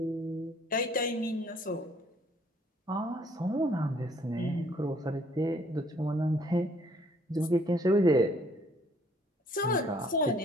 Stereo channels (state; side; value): normal; both; correlation 0.62